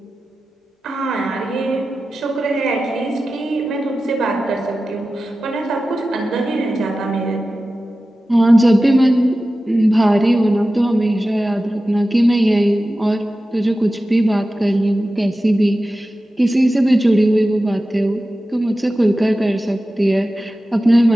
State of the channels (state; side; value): normal; both; correlation 0.94